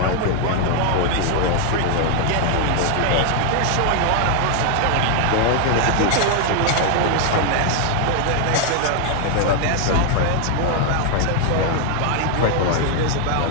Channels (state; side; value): different; both; correlation 0.00